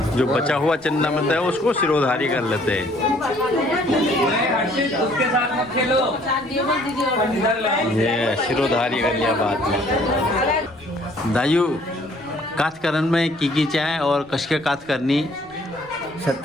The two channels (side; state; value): left; noise; rumble, 29 dB below the sound